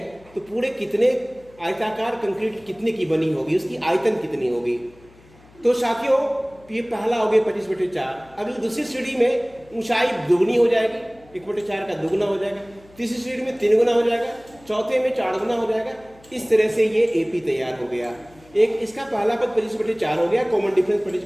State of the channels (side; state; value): left; noise; hum, 26 dB below the sound